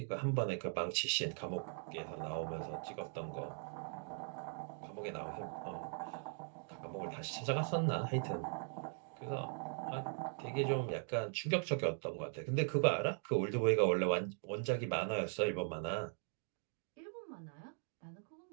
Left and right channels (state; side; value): silent; left; 51 dB below the other